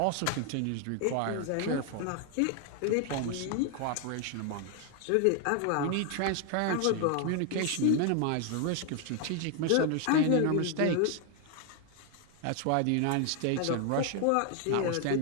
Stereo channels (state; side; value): different; both; correlation 0.00